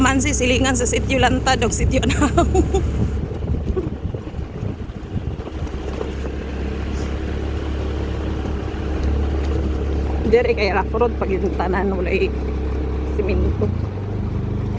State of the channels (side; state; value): both; identical; correlation 1.00